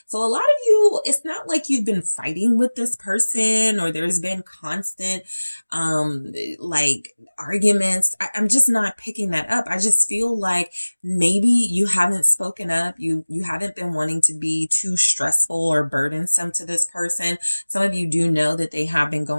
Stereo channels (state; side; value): inverted; both; correlation -1.00